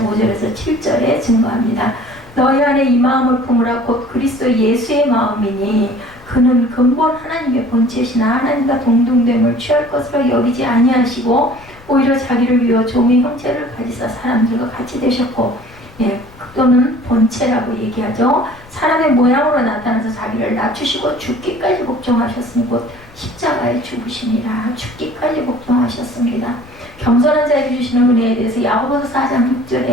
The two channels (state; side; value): noise; left; rumble, 23 dB below the sound